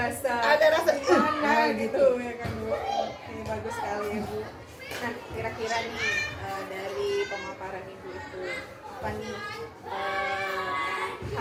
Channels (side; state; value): both; identical; correlation 1.00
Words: Nah, gitu ya kan, Bu. Ini bagus sekali ya, Bu. Nah, kira-kira nih dari pemaparan Ibu itu apa nih